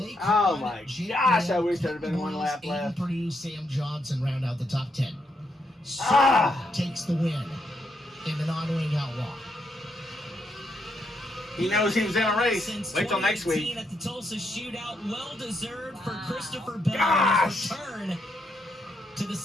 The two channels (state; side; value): normal; both; correlation 0.78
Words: Oh, my gosh, I wish there had been one lap left. Purdue, Sam Johnson round out the top 10. Takes the win in the non-wing outlaw. He knows he was in a race. Wait till next week. At the Tulsa shootout, well deserved for Christopher Bell on his return to the